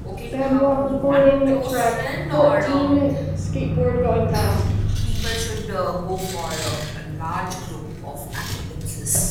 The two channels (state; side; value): identical; both; correlation 1.00